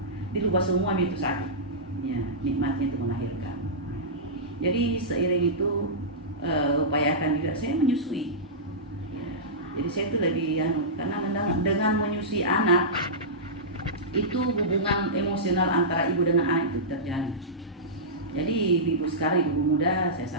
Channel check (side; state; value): both; normal; correlation -0.15